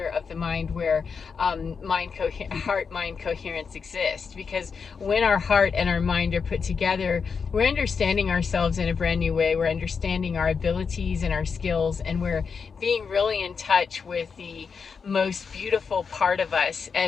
of the mind where heart-mind coherence exists, because when our heart and our mind are put together, we're understanding ourselves in a brand new way. We're understanding our abilities and our skills, and we're being really in touch with the most beautiful part of us.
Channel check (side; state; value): right; quieter; 5.7 dB